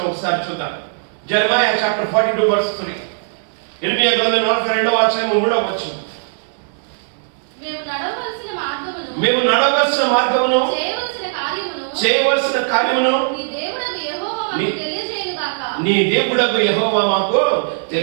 ఒకసారి చూద్దాం. జెరమయా చాప్టర్ 42:3. ఇర్మియా గ్రంథం 42వ అధ్యాయము 3వ వచనం. మేము నడవలసిన మార్గమును చేయవలసిన కార్యమును నీ దేవుడగు యెహోవా మాకు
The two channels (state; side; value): silent; left; 67 dB below the other